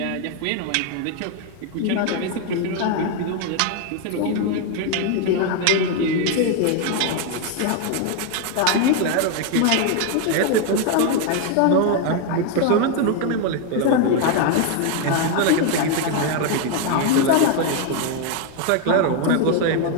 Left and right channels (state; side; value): different; both; correlation 0.01